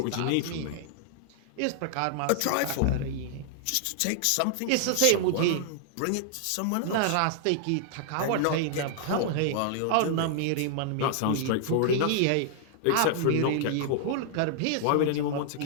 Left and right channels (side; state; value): both; different; correlation -0.01